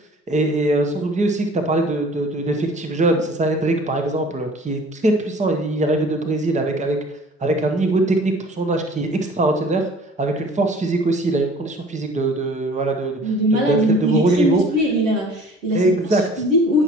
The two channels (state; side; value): normal; both; correlation 0.49